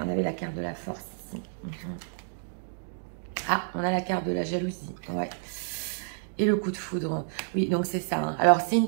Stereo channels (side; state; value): left; silent; digital silence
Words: on avait la carte de la force ici. Ah, on a la carte de la jalousie. Ouais. Et le coup de foudre. Oui, donc c'est ça. Hein. Alors, c'est une